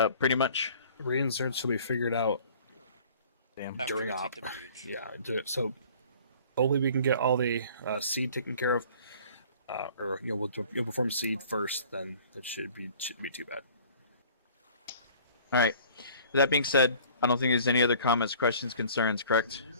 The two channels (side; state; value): both; inverted; correlation -0.50